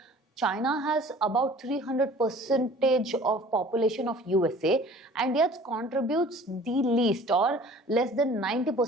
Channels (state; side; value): normal; both; correlation 0.48